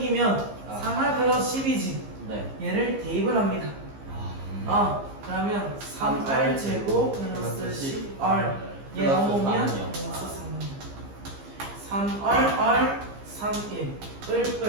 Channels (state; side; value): late; left; 15 ms